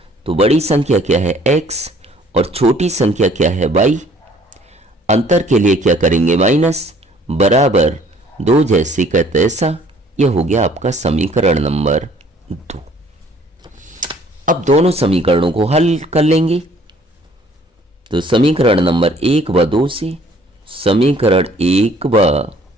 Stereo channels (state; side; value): normal; both; correlation 0.58